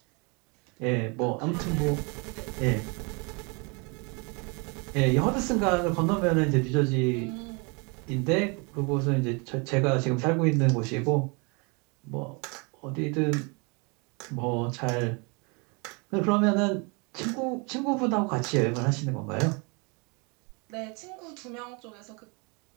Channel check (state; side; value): quieter; left; 31.3 dB